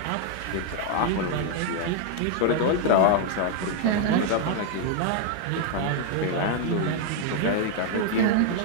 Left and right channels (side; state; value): both; different; correlation 0.00